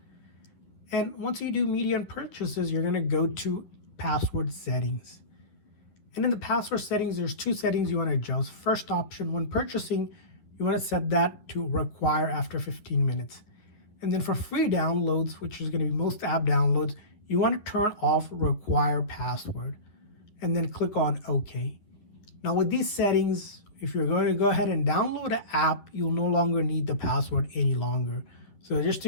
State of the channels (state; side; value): late; right; 11 ms